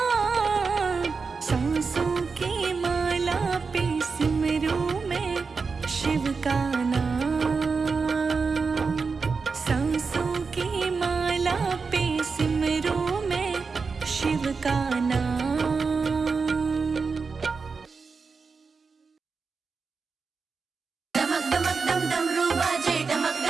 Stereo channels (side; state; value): left; quieter; 4.8 dB